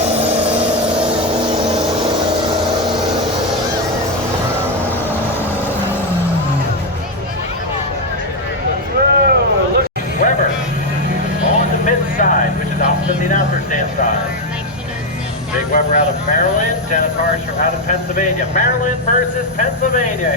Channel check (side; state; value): both; normal; correlation 0.06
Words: Which is opposite the announcer stand side. Big Weber out of Maryland, Dennis Harsh out of Pennsylvania. Maryland versus Pennsylvania.